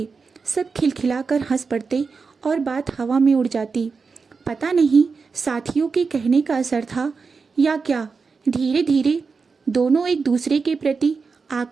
सब खिलखिलाकर हंस पड़ते और बात हवा में उड़ जाती। पता नहीं साथियों के कहने का असर था या क्या, धीरे धीरे दोनों एक दूसरे के प्रति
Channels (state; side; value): quieter; left; 4.9 dB